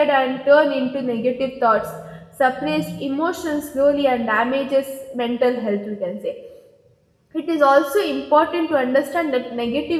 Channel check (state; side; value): identical; both; correlation 1.00